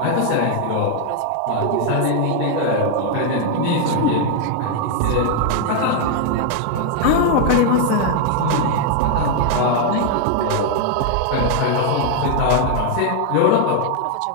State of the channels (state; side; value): different; both; correlation 0.00